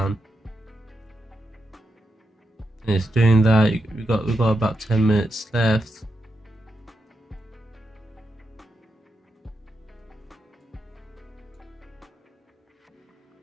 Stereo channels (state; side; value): normal; both; correlation 0.86